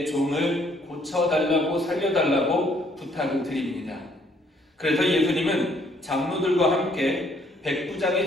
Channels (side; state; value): both; normal; correlation 0.65